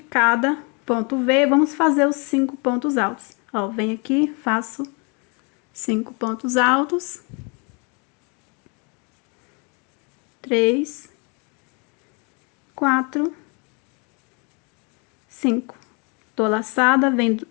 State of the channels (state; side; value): quieter; right; 33.2 dB